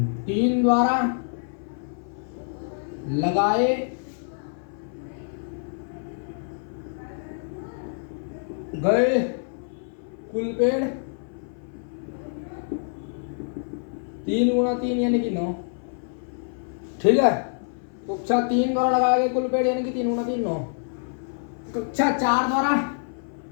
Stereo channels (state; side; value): silent; right; 57 dB below the other